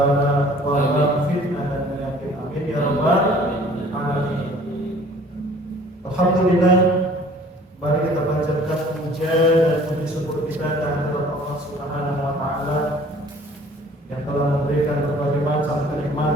wabah, fitnah dan penyakit, amin ya rabbal alamin. Alhamdulillah. Mari kita panjatkan puja dan puji syukur kita kehadirat Allah Subhanahu wa taala yang telah memberikan berbagai macam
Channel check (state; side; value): normal; both; correlation 0.52